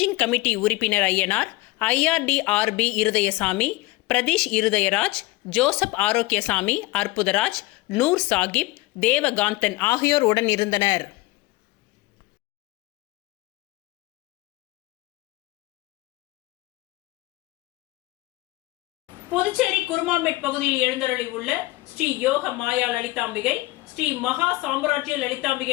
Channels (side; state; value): right; quieter; 20.2 dB